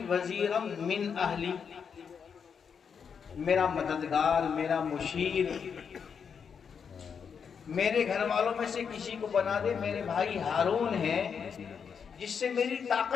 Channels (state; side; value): quieter; right; 6.7 dB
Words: वज़ीरम मिन अहली, मेरा मददगार, मेरा मुशीर, मेरे घर वालों में से किसी को बना दे। मेरे भाई हारून है, जिससे मेरी